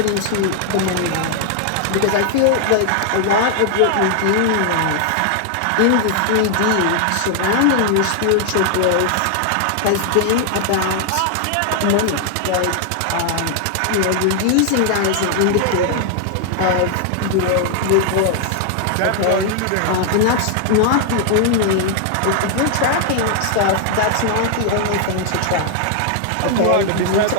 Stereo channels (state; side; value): different; both; correlation 0.00